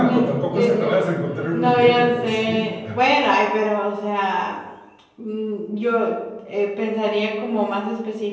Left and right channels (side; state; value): both; identical; correlation 1.00